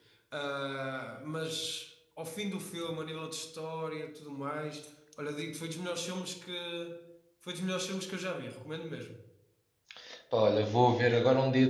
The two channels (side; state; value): both; identical; correlation 1.00